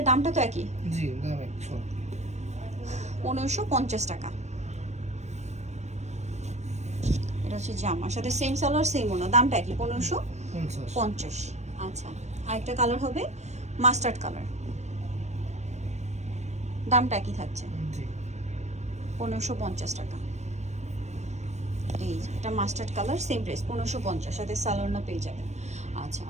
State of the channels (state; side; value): late; left; 0.33 ms